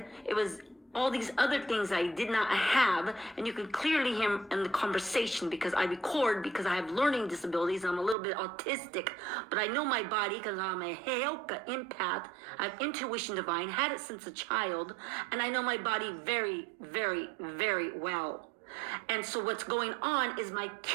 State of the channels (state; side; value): drops out; left; at 8.2 s